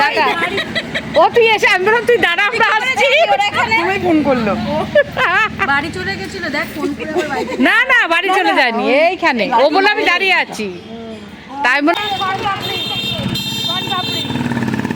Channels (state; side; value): identical; both; correlation 1.00